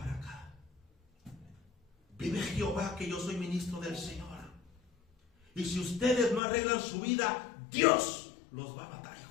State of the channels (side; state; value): right; drops out; at 6.4 s